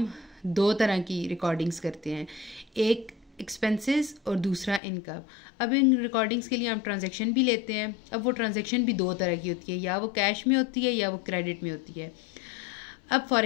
दो तरह की रिकॉर्डिंग्स करते हैं, एक एक्सपेंसेस और दूसरा इनकम। अब इन रिकॉर्डिंग्स के लिए हम ट्रांजैक्शन भी लेते हैं। अब वो ट्रांजैक्शन भी दो तरह की होती है, या वो कैश में होती है या वो क्रेडिट में होती है। अब फॉर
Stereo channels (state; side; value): drops out; right; at 4.8 s